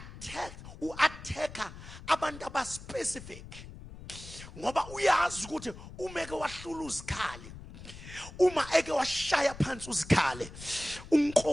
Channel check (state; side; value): noise; left; rumble, 14 dB below the sound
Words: abantu aba specific. Ngoba uyazi ukuthi uma eke wahlula uzikhali, uma eke washaya phansi uzikhali,